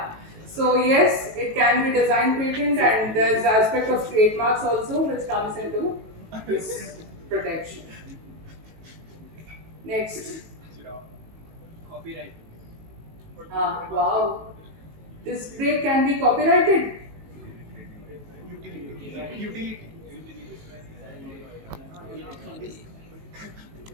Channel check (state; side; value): late; left; 19 ms